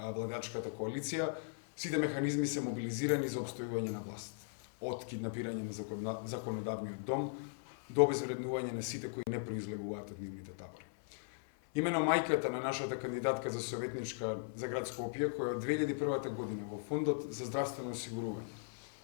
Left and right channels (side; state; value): right; silent; 52 dB below the other